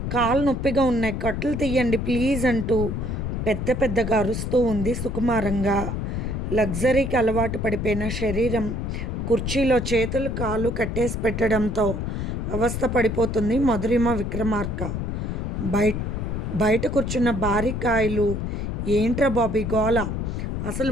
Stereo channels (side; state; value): left; noise; rumble, 3 dB below the sound